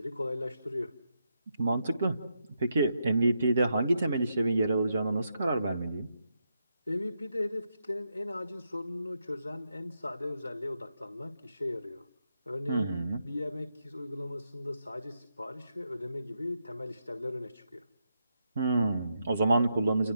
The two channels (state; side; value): inverted; both; correlation -0.82